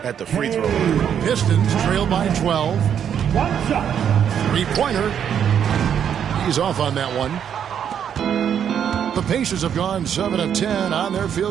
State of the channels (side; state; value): left; quieter; 8.6 dB